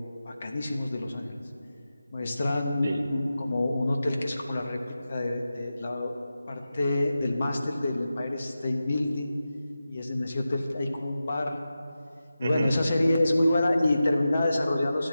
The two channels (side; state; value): both; inverted; correlation -0.93